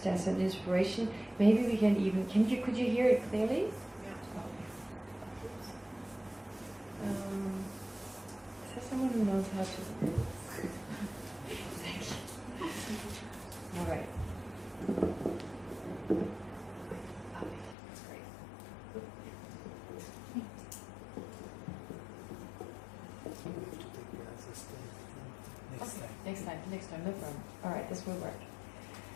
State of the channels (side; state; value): right; drops out; at 17.8 s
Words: as an inspiration. Maybe we can even, could you hear it clearly? Yeah. Is there someone who knows how to? Thank you. All right. That's great. Next time, no problem. All right, this will work.